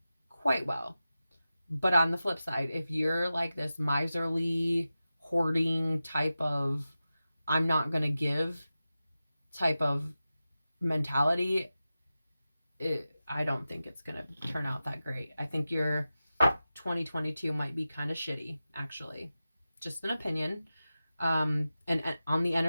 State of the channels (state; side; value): inverted; both; correlation -0.94